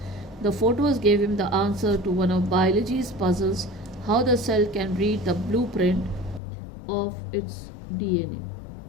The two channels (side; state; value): right; drops out; at 6.4 s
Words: the photos gave him the answer to one of biology's puzzles: how the cell can read the blueprint of its DNA.